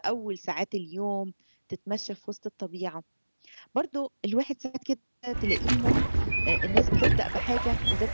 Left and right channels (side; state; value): both; inverted; correlation -1.00